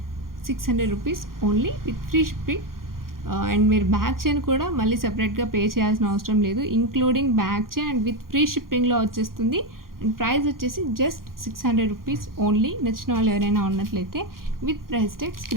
600 rupees only with free shipping. And మీరు బ్యాక్ చైన్ కూడా మళ్ళీ సపరేట్గా పే చేయాల్సిన అవసరం లేదు. Including back chain and with free షిప్పింగ్లో వచ్చేస్తుంది. అండ్ ప్రైస్ వచ్చేసి జస్ట్ 600 రూపీస్ ఓన్లీ. నచ్చిన వాళ్ళు ఎవరైనా ఉన్నట్లయితే with price tag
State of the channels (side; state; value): left; late; 0.92 ms